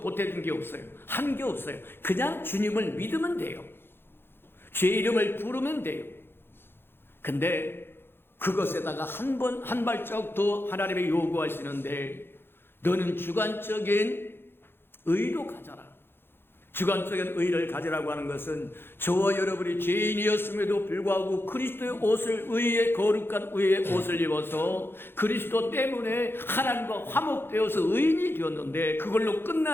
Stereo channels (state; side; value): late; right; 0.11 ms